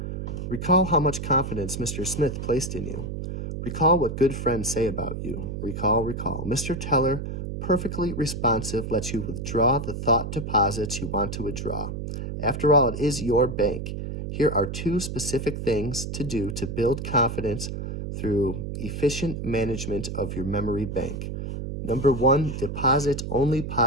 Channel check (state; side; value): noise; right; hum, 5 dB below the sound